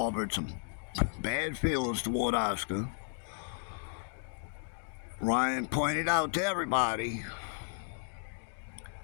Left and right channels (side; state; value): right; silent; digital silence